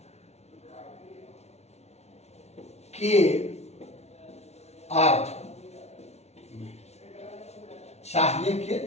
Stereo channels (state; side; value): late; right; 0.31 ms